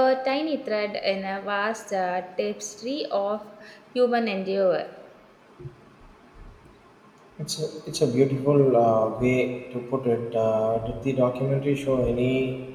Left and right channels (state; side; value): identical; both; correlation 1.00